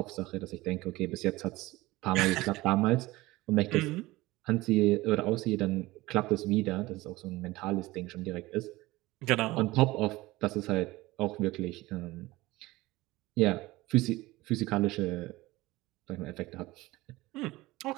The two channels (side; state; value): left; quieter; 19.5 dB